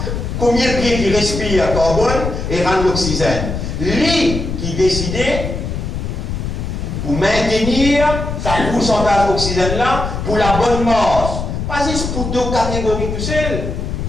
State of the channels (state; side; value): noise; left; rumble, 4 dB below the sound